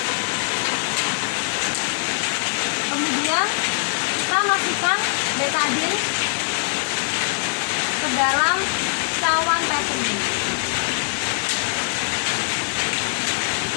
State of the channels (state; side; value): silent; right; digital silence